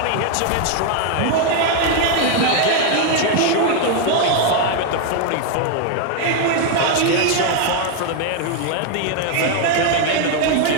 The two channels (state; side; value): different; both; correlation 0.01